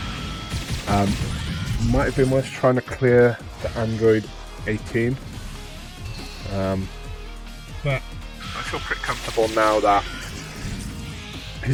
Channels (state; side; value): identical; both; correlation 1.00